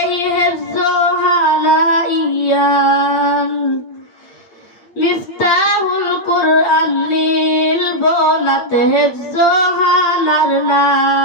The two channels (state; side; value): late; right; 8.7 ms